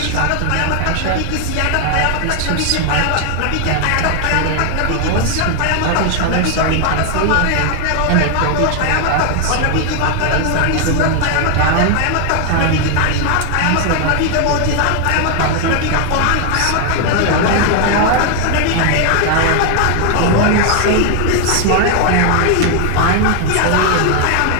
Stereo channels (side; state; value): both; different; correlation 0.00